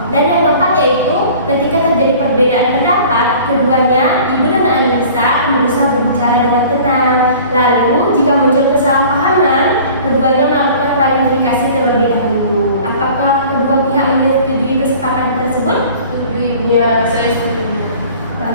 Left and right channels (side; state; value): both; inverted; correlation -0.46